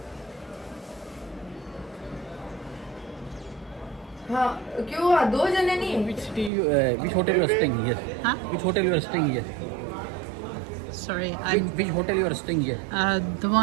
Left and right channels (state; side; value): drops out; left; at 6.5 s